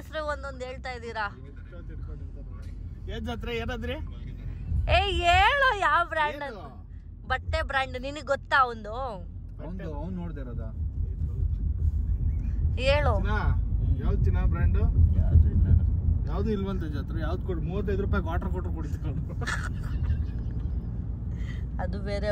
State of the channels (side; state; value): both; identical; correlation 1.00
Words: ಒಂದೊಂದ್ ಹೇಳ್ತಾ ಇದ್ದೀರಾ. ಏನಾದ್ರಿ ಏ ಹೇಳು ಯಾವ ಬ್ರ್ಯಾಂಡ್? ಬಟ್ಟೆ ಬ್ರ್ಯಾಂಡ್ ನಿನಗ್ ಗೊತ್ತಾ? ಒಂದು ನೋಡ್ದಿರೋದ ಹೇಳು. ಯಾವ್ದು ಚಿನ್ನ ಬ್ರ್ಯಾಂಡ್? ಯಾವ್ದು ಇಲ್ವಂತ ಜಾತ್ರೆ. ಯಾವ್ದು ಕೊಡು? 35 ರೂಪಾಯಿ ವಾಟರ್ ಕೊಟ್ರು ಕುಡಿಸ್ಕೊಂಡು. ಅದು ಬೇರೆ